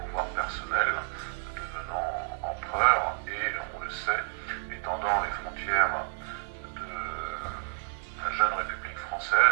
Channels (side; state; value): left; silent; digital silence